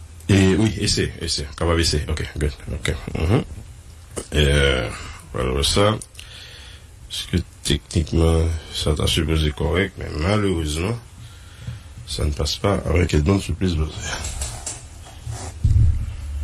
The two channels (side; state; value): both; identical; correlation 1.00